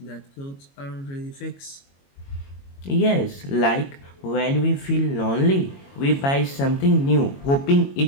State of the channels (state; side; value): late; right; 22 ms